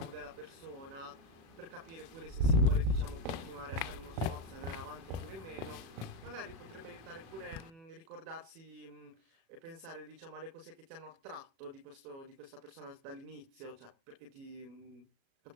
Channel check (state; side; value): late; left; 36 ms